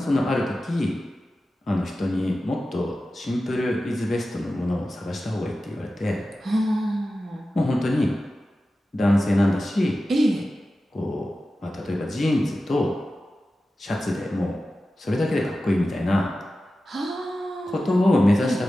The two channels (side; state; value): both; normal; correlation 0.94